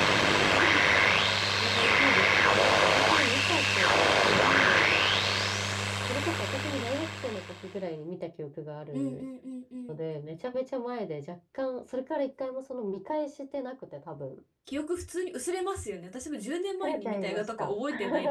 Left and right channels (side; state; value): both; identical; correlation 1.00